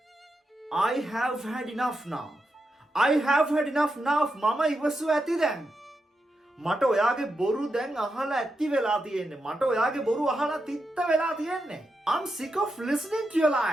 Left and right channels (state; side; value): normal; both; correlation 0.86